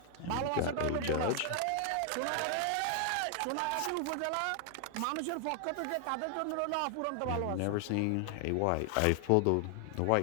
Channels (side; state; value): both; different; correlation 0.00